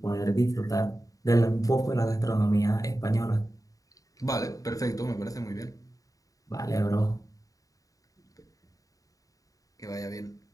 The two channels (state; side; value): late; right; 0.17 ms